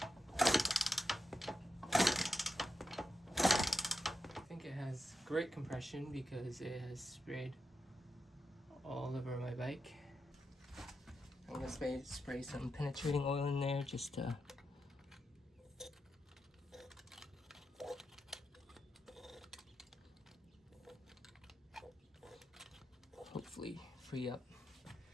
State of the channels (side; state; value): both; normal; correlation 0.84